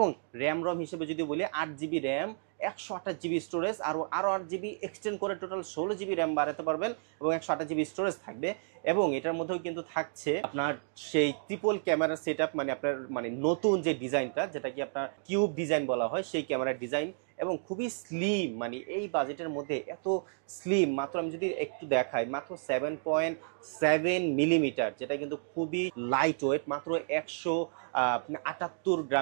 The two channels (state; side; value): silent; left; digital silence